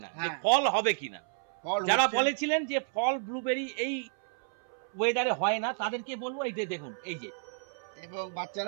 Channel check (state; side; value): silent; left; 57 dB below the other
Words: না যে হ্যাঁ। ফল হবে কিনা। ফল যারা হচ্ছে। বলেছিলেন যে ফল ব্লুবেরি এই ওয়েদারে হয় না তাদেরকে বলবো এই যে দেখুন এই যে এবং